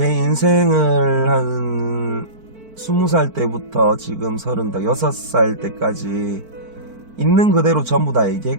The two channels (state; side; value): late; left; 4.5 ms